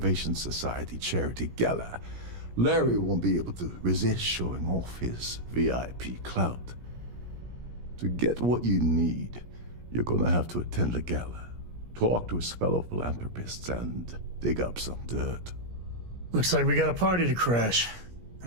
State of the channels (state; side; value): late; left; 17 ms